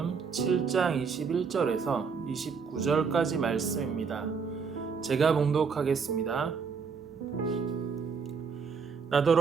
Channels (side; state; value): left; quieter; 5.7 dB